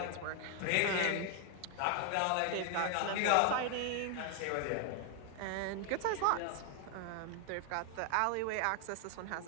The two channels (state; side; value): different; both; correlation 0.01